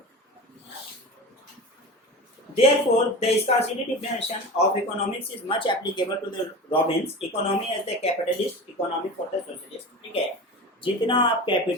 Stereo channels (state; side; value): normal; both; correlation 0.30